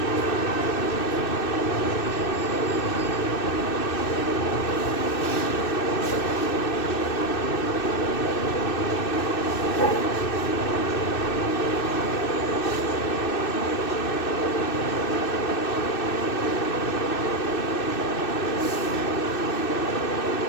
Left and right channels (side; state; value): right; late; 2.6 ms